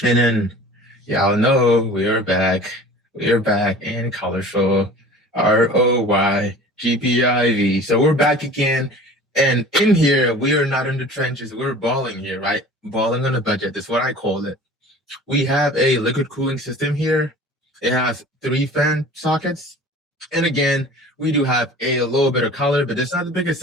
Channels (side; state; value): both; normal; correlation 0.42